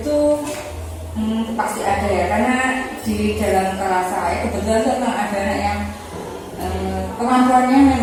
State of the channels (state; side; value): identical; both; correlation 1.00